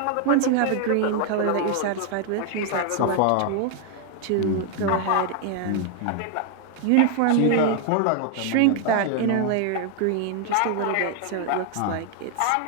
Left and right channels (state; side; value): different; both; correlation 0.00